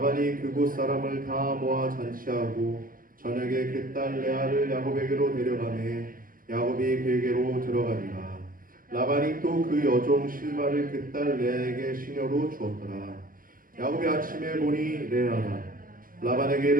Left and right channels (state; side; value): late; left; 0.41 ms